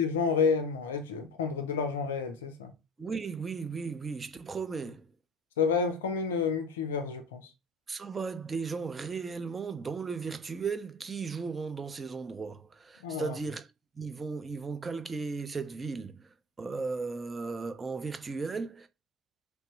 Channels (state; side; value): normal; both; correlation 0.36